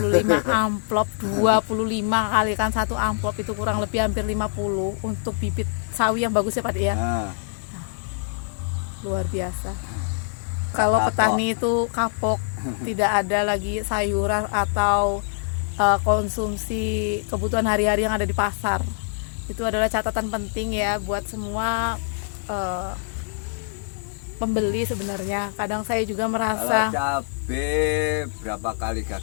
amplop, 25 kali kan satu amplop itu kurang lebih hampir 50 untuk bibit sawi yang bagus ya Pak De ya. Luar biasa. Kalau petani itu kapok, tidak ada lagi sayuran atau konsumsi kebutuhan hari-hari yang ada di pasar. Itu adalah catatan penting ya buat semua pembeli sebenarnya. Kadang saya juga merasa kalau cabai berapa kali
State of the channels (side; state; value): right; silent; 60 dB below the other